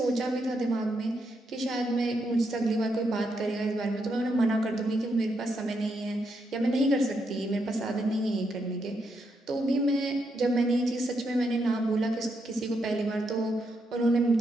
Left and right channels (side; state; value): both; normal; correlation 0.80